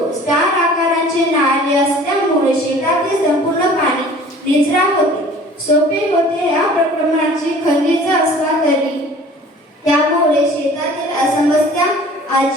स्टार आकाराचे नाले असल्यामुळे शेतातील संपूर्ण पाणी निचरा होते, सोपे होते. या प्रकरणाची खनिज असला तरी त्यामुळे शेतातील समस्या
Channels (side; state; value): both; normal; correlation 0.48